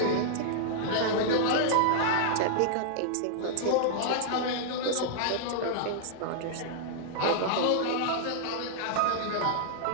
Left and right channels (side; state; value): both; different; correlation -0.01